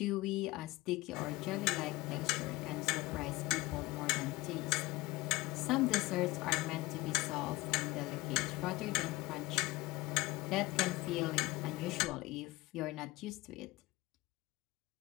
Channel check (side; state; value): right; quieter; 20.1 dB